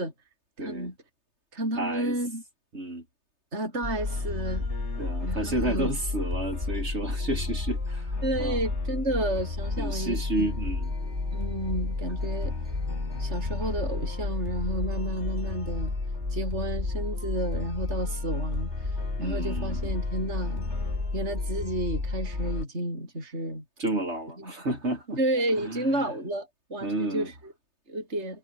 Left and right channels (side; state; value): left; late; 3.3 ms